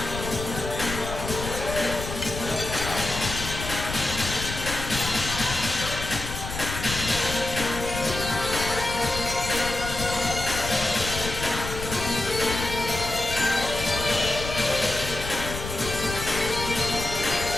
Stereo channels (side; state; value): left; noise; rumble, 7 dB below the sound